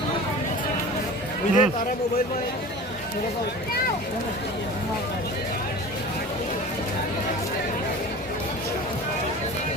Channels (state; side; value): normal; both; correlation 0.37